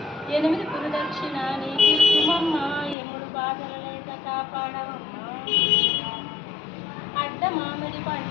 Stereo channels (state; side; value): drops out; right; at 3.0 s